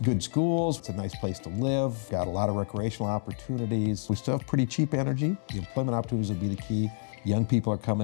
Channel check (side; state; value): right; silent; 59 dB below the other